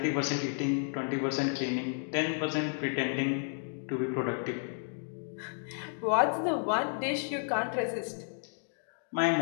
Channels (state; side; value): silent; right; 56 dB below the other